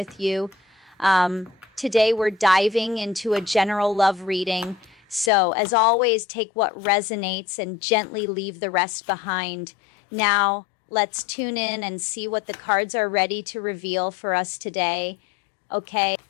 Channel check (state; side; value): drops out; right; at 5.3 s